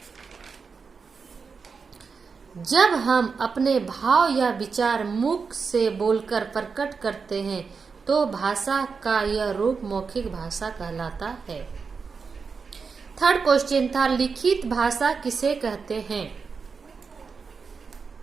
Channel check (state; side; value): quieter; left; 5.2 dB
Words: जब हम अपने भाव या विचार मुख से बोलकर प्रकट करते हैं तो भाषा का यह रूप मौखिक भाषा कहलाता है। थर्ड क्वेश्चन था, लिखित भाषा किसे कहते हैं?